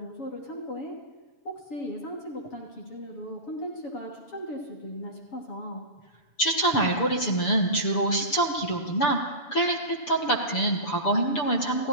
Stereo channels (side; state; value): right; late; 7.1 ms